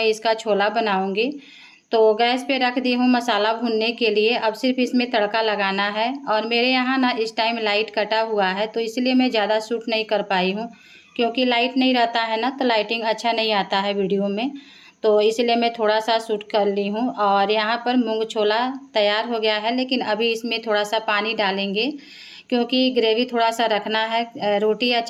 इसका छोला बनाऊँगी। तो गैस पे रख दी हूँ मसाला भूनने के लिए। अब सिर्फ इसमें तड़का लगाना है। और मेरे यहाँ ना इस टाइम लाइट कटा हुआ है, तो इसलिए मैं ज़्यादा शूट नहीं कर पाई हूँ, क्योंकि लाइट नहीं रहता है ना, तो लाइटिंग अच्छा नहीं आता है वीडियो में। तो इसलिए मैं थोड़ा सा शूट कर ली हूँ। और यहाँ पर मूंग छोला तैयार हो गया है, लेकिन अभी इसमें थोड़ा सा पानी डालेंगे, क्योंकि ग्रेवी थोड़ा सा रखना है। रोटी या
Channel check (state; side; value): identical; both; correlation 1.00